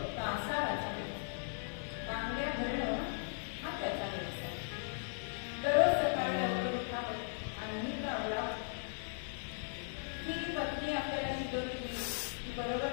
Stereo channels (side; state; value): right; silent; digital silence